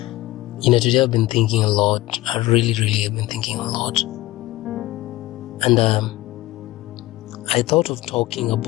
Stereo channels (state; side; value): quieter; right; 17.5 dB